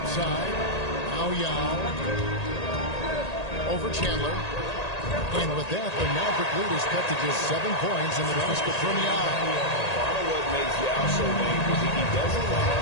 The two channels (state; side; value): late; right; 1.8 ms